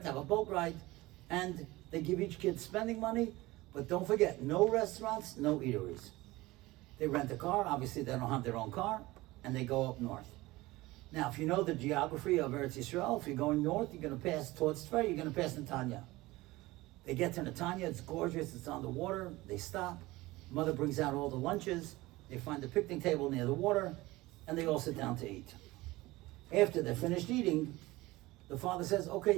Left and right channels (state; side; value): quieter; left; 19.7 dB